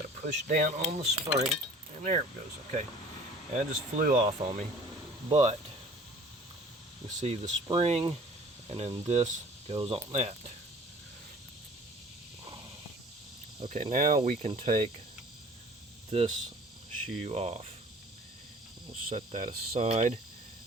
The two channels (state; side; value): normal; both; correlation 0.48